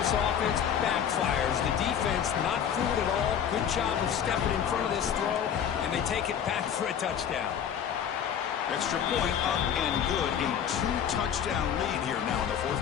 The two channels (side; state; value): right; quieter; 8.6 dB